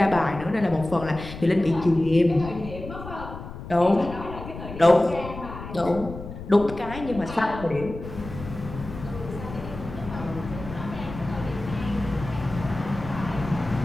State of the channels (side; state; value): left; noise; rumble, 11 dB below the sound